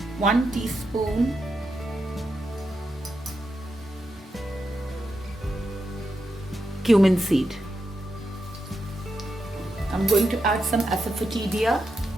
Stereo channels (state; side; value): normal; both; correlation 0.85